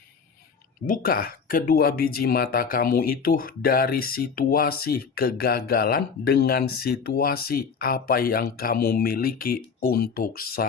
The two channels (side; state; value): right; quieter; 5.8 dB